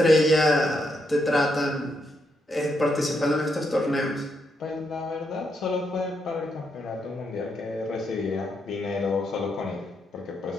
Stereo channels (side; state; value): both; normal; correlation 0.79